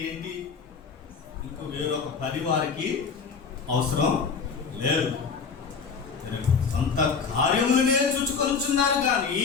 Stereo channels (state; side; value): quieter; right; 5.6 dB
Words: ఏంటి? ఇంకో వేరొక పని వారికి అవసరం లేదు. సొంత కార్యములనే చూచుకొనుచున్నారు కానీ